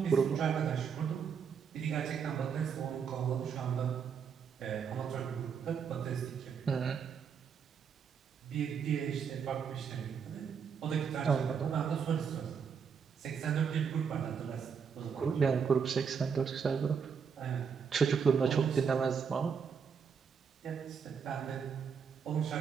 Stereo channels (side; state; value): left; quieter; 6.6 dB